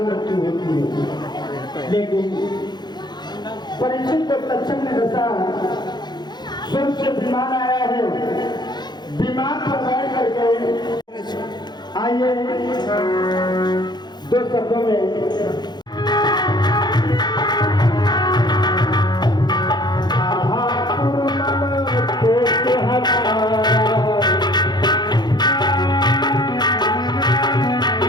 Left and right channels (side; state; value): right; late; 0.21 ms